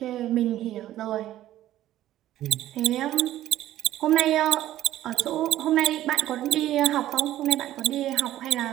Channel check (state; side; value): quieter; left; 13.6 dB